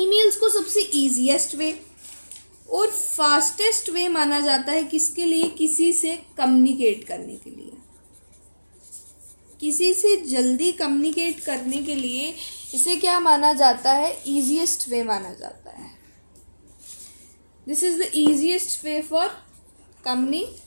को सबसे ईजीएस्ट वे और फास्टेस्ट वे माना जाता है किसके लिए, किसी से कम्युनिकेट करने के लिए. किसी से जल्दी कम्युनिकेट करने के लिए इसे क्या माना जाता है, ईजीएस्ट वे माना जाता है. This is the easiest way for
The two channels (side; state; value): both; inverted; correlation -1.00